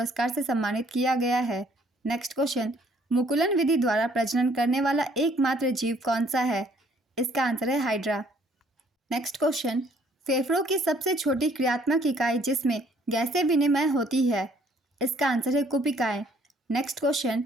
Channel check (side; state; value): both; normal; correlation 0.62